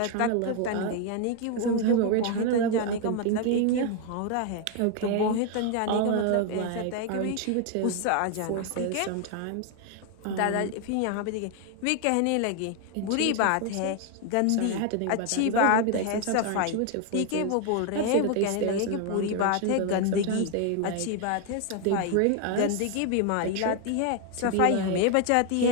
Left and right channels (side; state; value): both; different; correlation 0.01